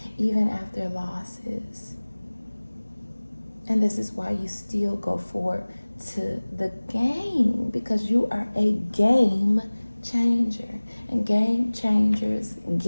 even after losses. And this is why you still go forward to the game, because you are a game changer. And game changers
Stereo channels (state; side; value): inverted; both; correlation -1.00